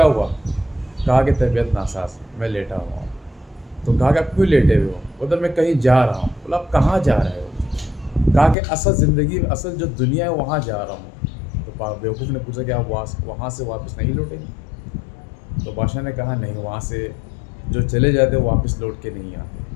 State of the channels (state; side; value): drops out; right; at 8.6 s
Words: हुआ। कहा कि तबीयत नासाज है, मैं लेटा हुआ हूँ। तो कहा कि आप क्यों लेटे हुए हो। बोला मैं कहीं जा रहा हूँ। बोला आप कहाँ जा रहे हो। कहा कि असल ज़िंदगी, असल जो दुनिया है वहाँ जा रहा हूँ। तो बेवकूफ़ ने पूछा कि आप वहाँ से वापस नहीं लौटेंगे। तो बादशाह ने कहा नहीं, वहाँ से जो चले जाते वो वापस लौट के नहीं आते।